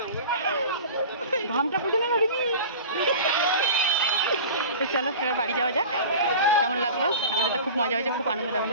ঘামটা পুছে না রিমি। তো চলো এবার বাড়ি যাওয়া যাক। কেমন লাগলো? আমাদের তো খুব মজা হয়েছে, খুব আনন্দ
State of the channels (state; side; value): inverted; both; correlation -0.37